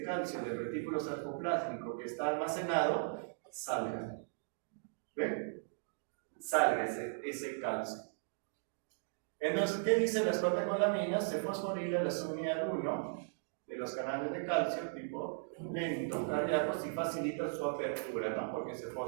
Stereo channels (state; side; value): silent; left; digital silence